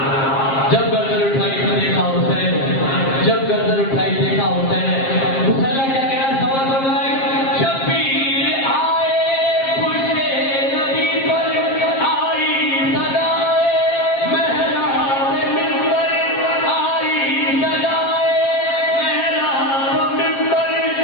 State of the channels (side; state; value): right; late; 7.5 ms